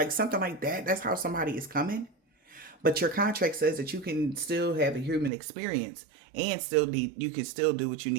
something like that. That's how somebody is coming. But your contract says that you can still have a human experience and you can still do what you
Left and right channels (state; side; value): drops out; left; at 5.3 s